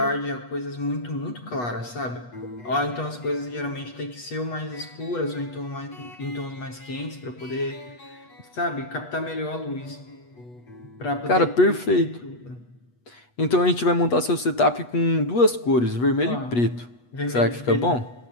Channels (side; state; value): right; late; 8.2 ms